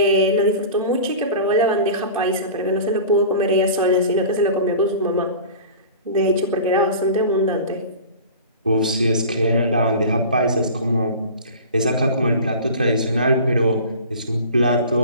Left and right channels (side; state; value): both; inverted; correlation -0.37